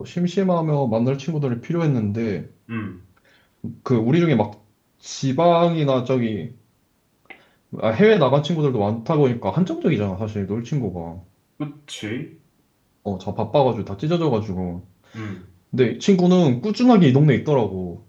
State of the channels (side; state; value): both; identical; correlation 1.00